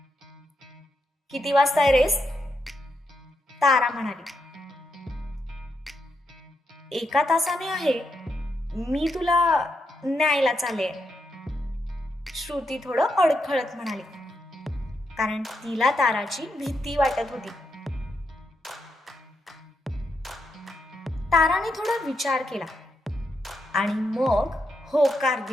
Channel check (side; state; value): both; normal; correlation 0.82